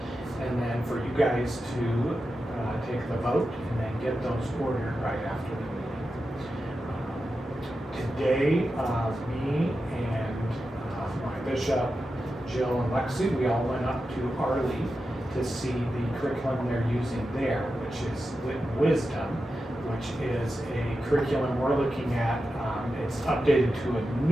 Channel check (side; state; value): both; normal; correlation 0.90